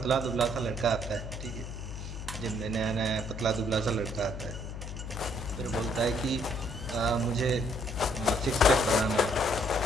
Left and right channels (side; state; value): left; noise; hum, 8 dB below the sound